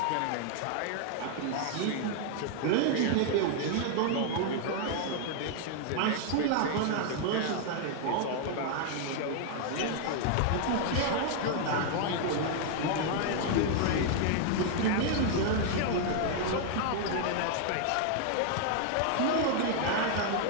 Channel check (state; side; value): different; both; correlation 0.00